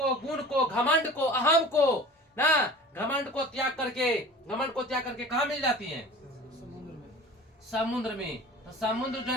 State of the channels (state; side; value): normal; both; correlation 0.41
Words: गुण को, घमंड को, अहम को ना, घमंड को त्याग करके कहाँ मिल जाती हैं? समुद्र में। तो समुद्र जो